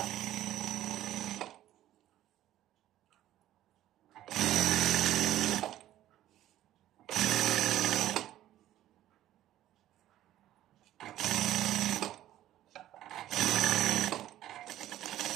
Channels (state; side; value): quieter; left; 13.4 dB